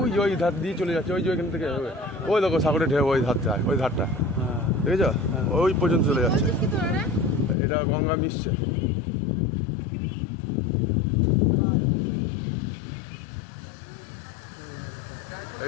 ওই ধার দিয়ে চলে যাচ্ছে, ওই যে ওইখান থেকে ওই দেখো সাগরের ঢেউ, ওই ধার যায়, ওই ধারটা দেখেছ, ওই পর্যন্ত চলে যাচ্ছে। এটা গঙ্গা মিশছে। এই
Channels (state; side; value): drops out; right; at 7.6 s